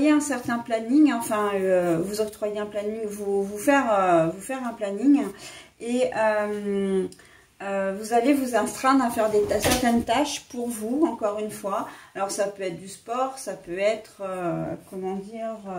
un certain planning, enfin vous octroyer un planning, vous faire un planning, et vous allez vous astreindre à faire certaines tâches pour vous, encore une fois. Alors ça peut être du sport, ça peut être, comment dire...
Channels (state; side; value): identical; both; correlation 1.00